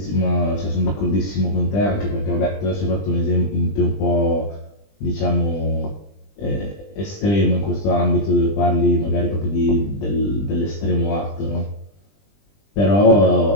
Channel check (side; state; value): right; late; 20 ms